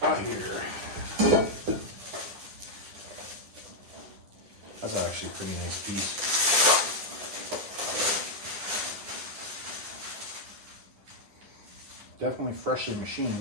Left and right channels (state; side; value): late; left; 10 ms